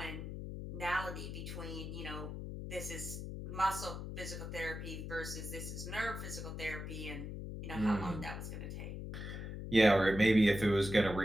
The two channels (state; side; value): noise; left; hum, 7 dB below the sound